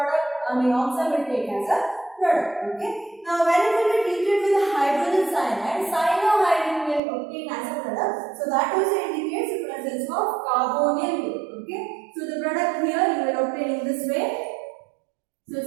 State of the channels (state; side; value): drops out; left; at 7.0 s